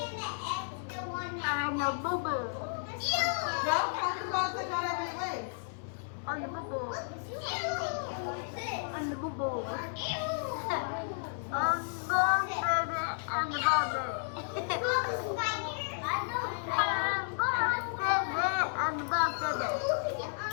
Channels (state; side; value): silent; right; 56 dB below the other